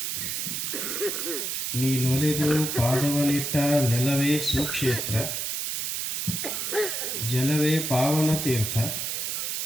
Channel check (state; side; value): noise; right; hiss, 2 dB below the sound